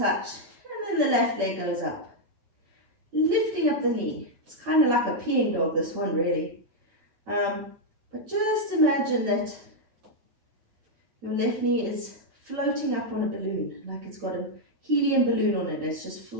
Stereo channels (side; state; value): left; late; 9.1 ms